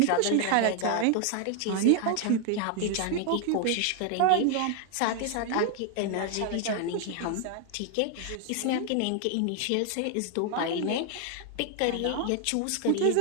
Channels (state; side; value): different; both; correlation 0.00